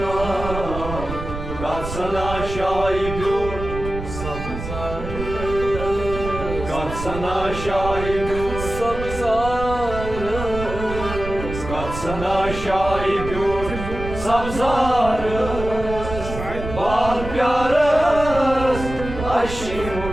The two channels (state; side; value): noise; right; rumble, 8 dB below the sound